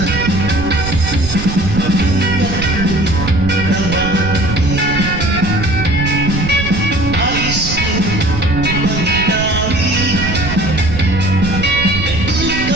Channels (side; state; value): right; noise; rumble, 6 dB below the sound